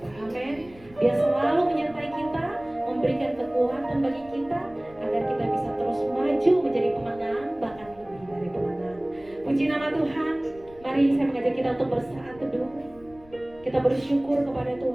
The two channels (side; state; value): left; noise; rumble, 24 dB below the sound